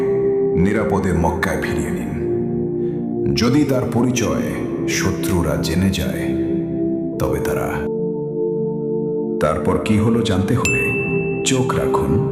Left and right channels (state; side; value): identical; both; correlation 1.00